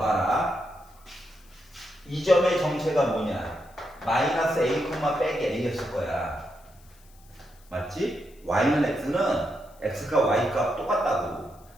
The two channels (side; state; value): left; noise; hiss, 28 dB below the sound